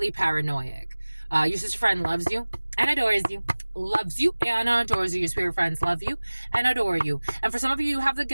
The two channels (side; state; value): both; inverted; correlation -1.00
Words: paranoid. Your sister friend loves you and adores you. Loves you and adores you. Your spirit friends love you and adore you. And for some of you, you have the